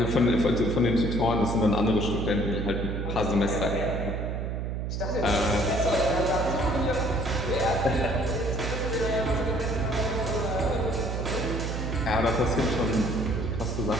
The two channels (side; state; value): right; noise; hum, 2 dB below the sound